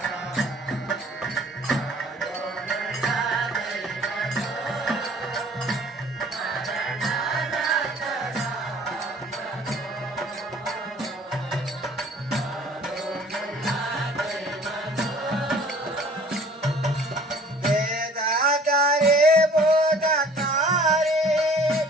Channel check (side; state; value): both; normal; correlation 0.51